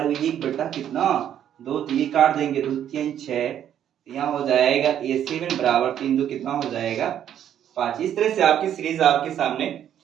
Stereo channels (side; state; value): left; quieter; 10.2 dB